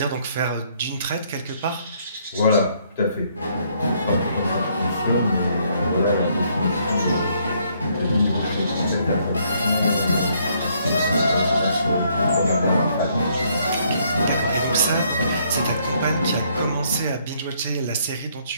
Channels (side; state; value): both; inverted; correlation -0.68